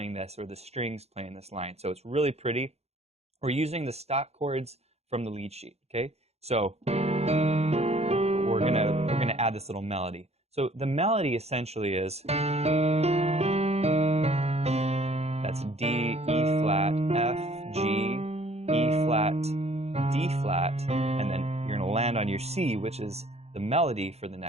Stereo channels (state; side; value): late; left; 0.31 ms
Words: this or the strings playing this line. So it's really pretty. We're using the stock chords from the lead sheet. Okay, so we're gonna add this little melody. So the melody essentially is, that's D, E flat, F, G, E flat, D flat, and then you're gonna land on your C, which is the melody for the